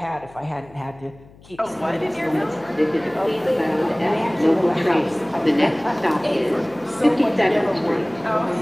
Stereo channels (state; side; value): noise; left; hum, 24 dB below the sound